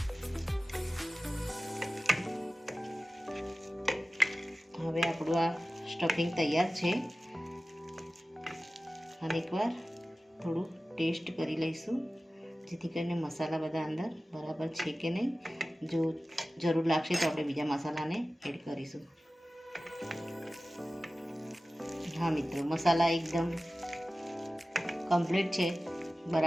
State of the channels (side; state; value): both; normal; correlation 0.96